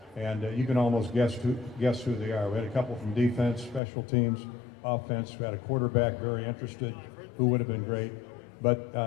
And you can almost guess who they are. We had a couple from defense, special teams, offense. We had a quarterback very interested who would have been great.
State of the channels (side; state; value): right; drops out; at 3.8 s